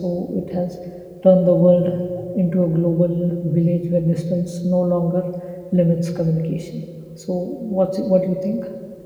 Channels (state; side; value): identical; both; correlation 1.00